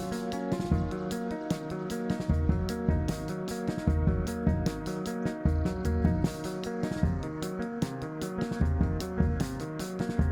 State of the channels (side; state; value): both; identical; correlation 1.00